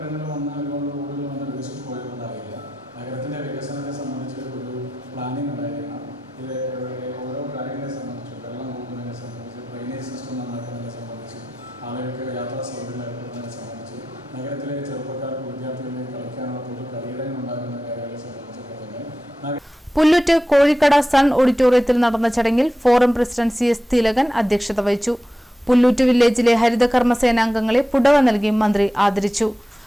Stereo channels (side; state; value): both; normal; correlation 0.91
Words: വന്ന് ഒരുപാട് റോഡുകൾ വന്ന് വികസിച്ച് പോയതുകൊണ്ടായില്ല. നഗരത്തിൻ്റെ വികസനത്തെ സംബന്ധിച്ച് ഒരു പ്ലാനിങ് ഉണ്ടായിരിക്കണം. ഇത് ഓരോ കാര്യങ്ങളെ സംബന്ധിച്ച്, വെള്ളം പോകുന്നതിനെ സംബന്ധിച്ച്, ഡ്രെയിനേജ് സിസ്റ്റം നന്നാക്കുന്നതിനെ സംബന്ധിച്ച്, ആളുകൾക്ക് യാത്രാ സൗകര്യം ഏർപ്പെടുന്നതിനെ സംബന്ധിച്ച്, നഗരത്തിലെ ചെറുപ്പക്കാർക്ക് വിദ്യാർത്ഥികളെ കളിക്കാനുള്ള പൊതു കളിയിടങ്ങൾ ഉണ്ടാകുന്ന കാര്യങ്ങളെ സംബന്ധിച്ചൊക്കെ തന്നെ. പുല്ലൂറ്റ് കോഴിക്കട സൺ ഓഡിറ്റോറിയത്തിൽ നടന്ന ചടങ്ങിൽ ഫോറം പ്രസിഡന്റ് CS തിലകൻ അധ്യക്ഷത വഹിച്ചു. പുല്ലൂറ്റ് വില്ലേജിലെ ഹരിതകർമ്മസേന അംഗങ്ങളെ പുടവ നൽകി മന്ത്രി ആദരിച്ചു.